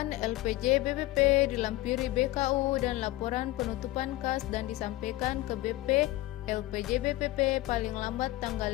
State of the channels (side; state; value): right; quieter; 17.5 dB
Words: LPJ BPP dilampiri BKU dan laporan penutupan kas dan disampaikan ke BP LPJ BPP paling lambat tanggal